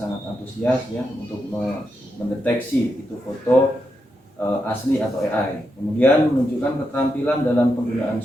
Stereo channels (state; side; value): normal; both; correlation 0.84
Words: antusias ya untuk mendeteksi itu foto asli atau AI. Kemudian menunjukkan keterampilan dalam penggunaan